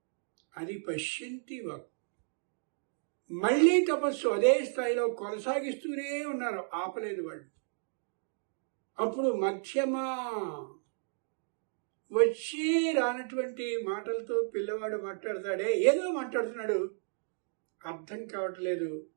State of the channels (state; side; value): silent; left; digital silence